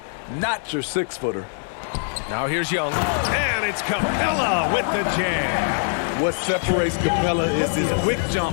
not your 6-footer. Now here's Young. And it's Capella with the jam. What separates Capella is his quick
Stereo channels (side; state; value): right; silent; digital silence